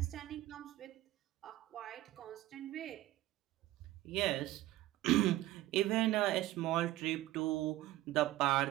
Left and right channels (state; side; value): quieter; left; 16.0 dB